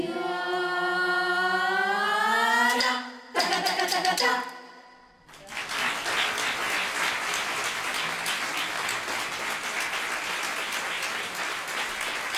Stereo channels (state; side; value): identical; both; correlation 1.00